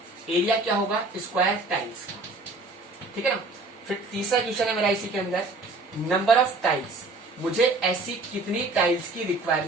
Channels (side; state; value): left; quieter; 3.2 dB